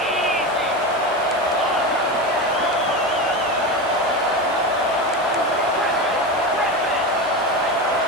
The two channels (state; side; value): noise; right; hiss, 22 dB below the sound